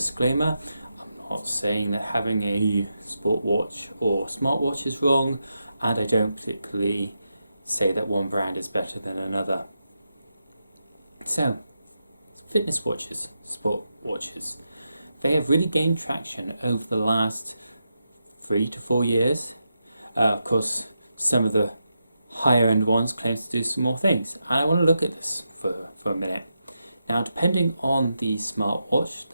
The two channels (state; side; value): inverted; both; correlation -0.86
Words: I'm not saying that having a sport watch or smartwatch is wrong, and I don't particularly say that one brand is better than another. So, fitness watches, sport watches. They have really gained traction over the last 3 to 4 years. Of course, some of the higher end ones claim to do some more things. And I want to look at this for a minute. Now, depending on the smartwatch,